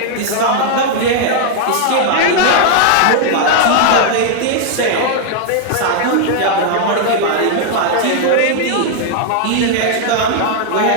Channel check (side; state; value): both; different; correlation 0.00